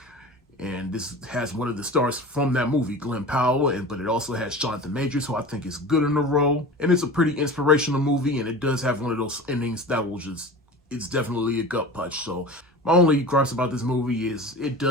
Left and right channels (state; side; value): normal; both; correlation 0.35